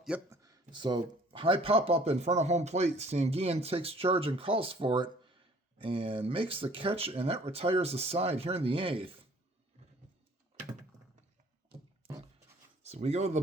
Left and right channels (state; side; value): normal; both; correlation 0.54